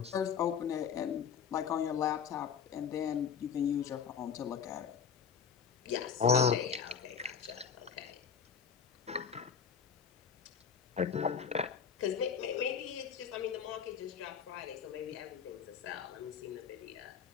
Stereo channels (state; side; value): quieter; right; 7.0 dB